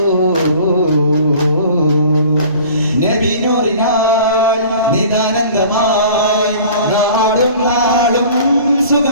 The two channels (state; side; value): inverted; both; correlation -0.45